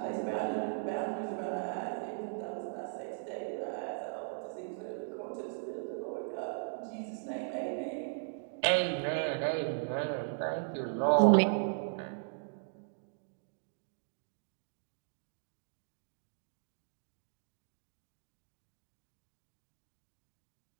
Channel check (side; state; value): left; silent; digital silence